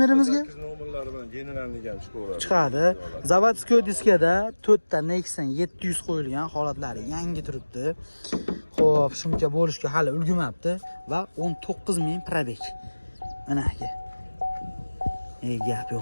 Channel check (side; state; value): both; inverted; correlation -1.00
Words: 8 nomerlari bilan generalni ham chiqaveradi. Chiqadi. Zavodskiy diskada 4 ta Nexon 700 qo'yilgan, holatlari yangi turibdi. Xo'p, shuncha bo'lishga hali ulgurmabdi va 19000 probeg. Mana aka. Gap